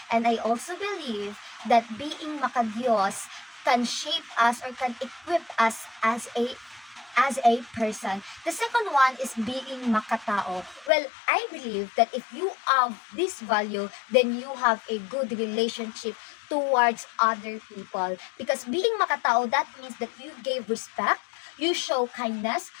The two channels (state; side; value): drops out; right; at 10.9 s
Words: And I also believe that being makadiyos can shape us or can equip us as a person. The second one is being makatao. Well, I believe that if you have this value, then you have a good relationship towards other people. Because being makatao, that means that you gave respect, you show kindness,